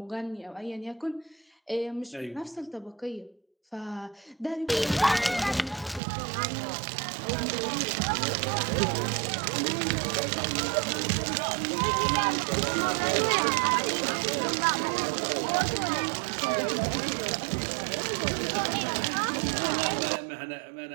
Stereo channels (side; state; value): left; drops out; at 6.0 s